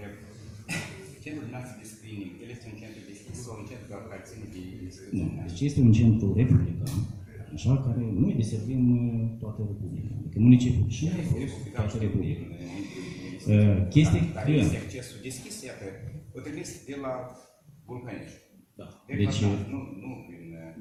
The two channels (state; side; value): identical; both; correlation 1.00